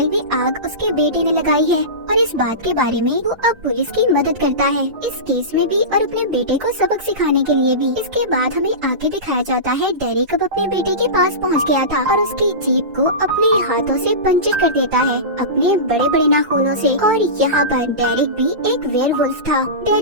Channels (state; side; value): late; left; 5.8 ms